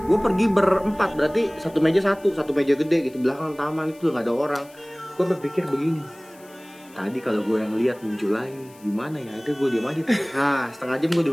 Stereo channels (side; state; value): left; noise; hiss, 26 dB below the sound